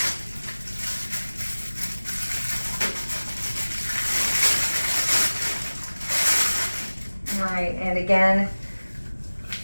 Right, and again,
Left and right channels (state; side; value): inverted; both; correlation -1.00